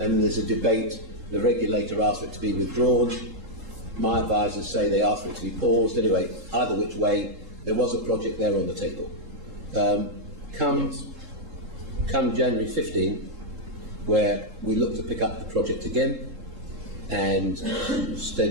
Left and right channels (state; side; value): late; left; 3.7 ms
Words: there's a debate. The regulator asked for it to be withdrawn. My advisors say they asked for it to be paused. Anyway, either which way, there was a project there on the table. Come January 15, where we looked to pick up the project again, and